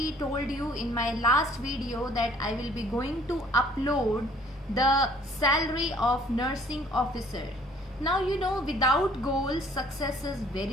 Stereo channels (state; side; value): normal; both; correlation 0.58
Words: told you in my last video that I will be going to upload the salary of nursing officer. Now you know without goal success is